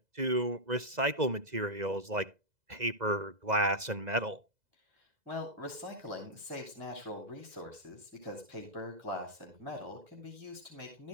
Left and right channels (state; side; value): late; left; 2.0 ms